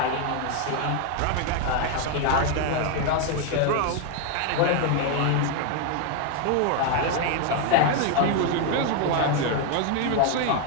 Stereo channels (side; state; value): both; different; correlation 0.01